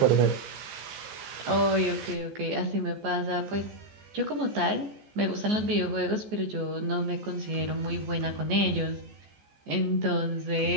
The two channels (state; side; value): late; left; 14 ms